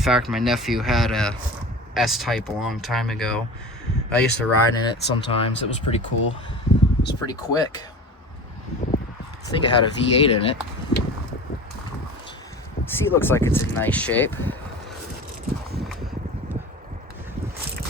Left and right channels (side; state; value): both; normal; correlation 0.35